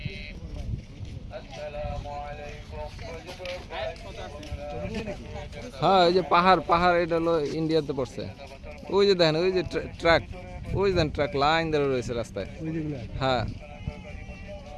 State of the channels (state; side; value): identical; both; correlation 1.00